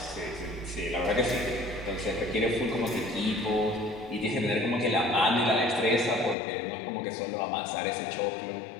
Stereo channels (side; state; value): right; drops out; at 6.4 s